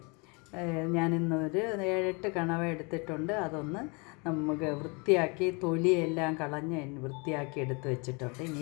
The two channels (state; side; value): quieter; right; 30.9 dB